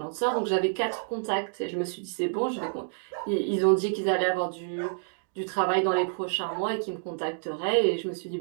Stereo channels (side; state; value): left; silent; digital silence